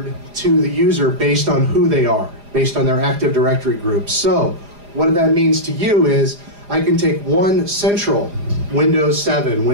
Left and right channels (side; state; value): left; late; 4.9 ms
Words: to the user based on who they are, based on their Active Directory group. So what that means to you is I can take one central Windows 7,